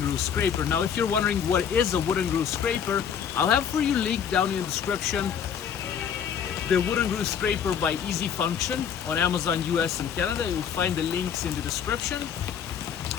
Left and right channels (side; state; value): right; quieter; 8.0 dB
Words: grill scraper. Now, if you're wondering what is a wooden grill scraper, I'll have for you link down in the description the wooden grill scraper by Easy Function on Amazon US and Canada. You'll find the links in the description